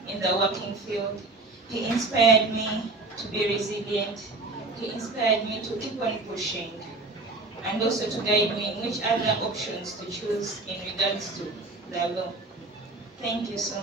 in the working field. He inspired me to be resilient. He inspired me to keep on pushing, and also to guide me in which other options to choose in regards to the law. Thank you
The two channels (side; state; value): left; quieter; 3.2 dB